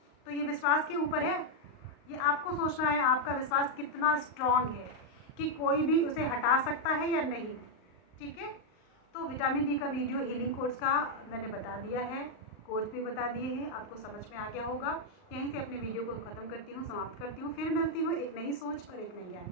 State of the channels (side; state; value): right; late; 38 ms